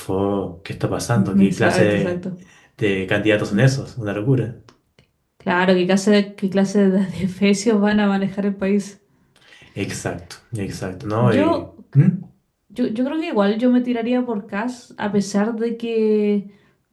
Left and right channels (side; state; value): both; identical; correlation 1.00